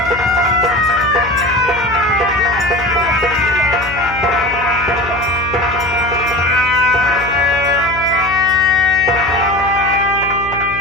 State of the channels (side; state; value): left; noise; hum, 13 dB below the sound